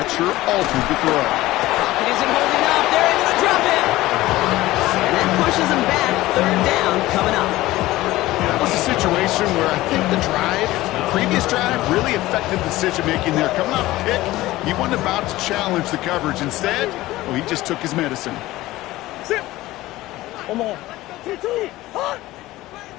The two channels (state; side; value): quieter; right; 17.4 dB